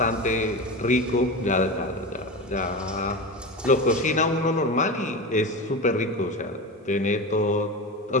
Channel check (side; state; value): both; normal; correlation 0.24